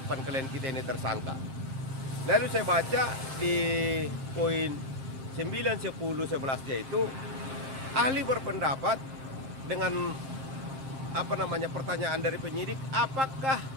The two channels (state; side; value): late; left; 7.6 ms